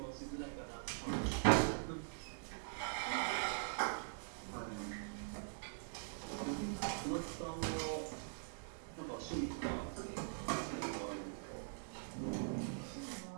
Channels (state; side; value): silent; left; digital silence